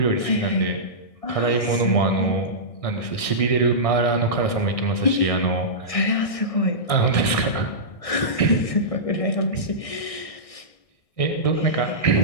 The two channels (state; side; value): late; right; 1.6 ms